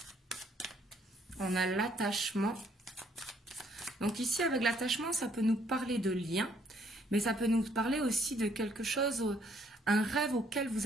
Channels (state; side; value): normal; both; correlation 0.66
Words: On a l'attachement. Donc ici, avec l'attachement, ça peut nous parler de lien, mais ça peut nous parler aussi de quelque chose, un rêve auquel